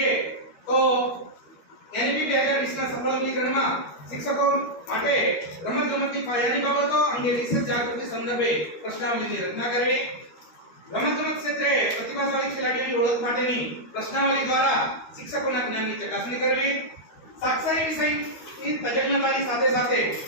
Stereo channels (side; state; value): right; late; 13 ms